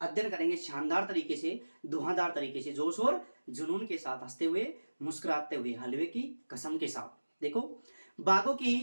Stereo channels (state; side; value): inverted; both; correlation -1.00